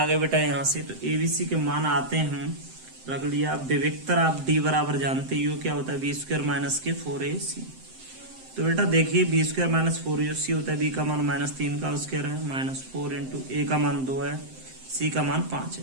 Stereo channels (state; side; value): late; left; 7.7 ms